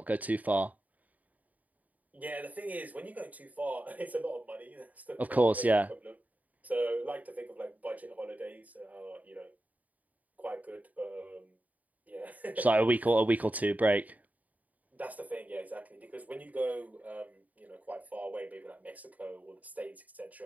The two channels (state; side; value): late; left; 0.075 ms